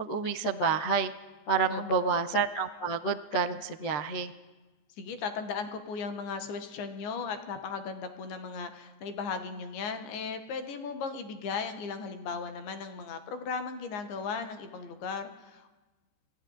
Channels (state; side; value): late; right; 14 ms